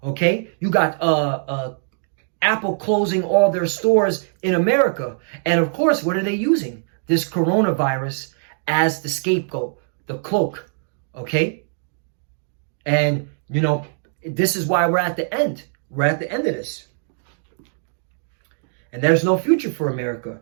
Okay, you got Apple closing all their stores in America, and of course, what are they using? This coronavirus as the scapegoat, the cloak. Okay, and this is why we're at the end. We're at the end of this. And there's no future for America.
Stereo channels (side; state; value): left; silent; digital silence